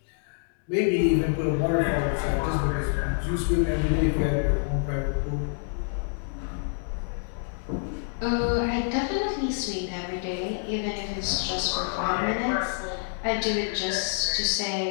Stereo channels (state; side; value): silent; right; 60 dB below the other